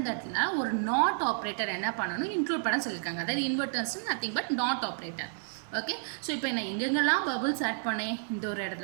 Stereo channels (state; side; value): silent; left; 55 dB below the other